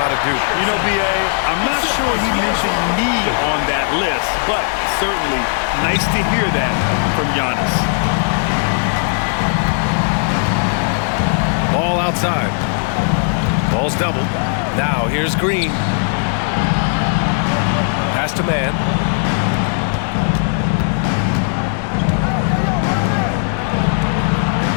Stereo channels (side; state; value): right; silent; digital silence